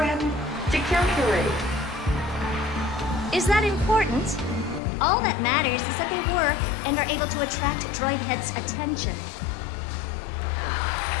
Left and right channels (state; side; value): drops out; right; at 4.8 s